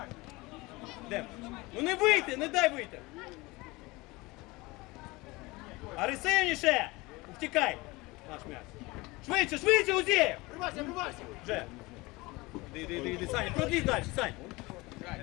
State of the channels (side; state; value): right; quieter; 22.6 dB